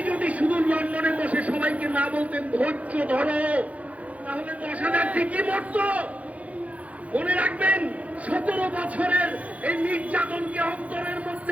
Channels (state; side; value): late; left; 0.067 ms